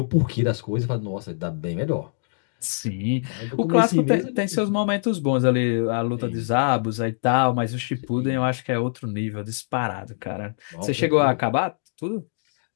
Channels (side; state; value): right; silent; digital silence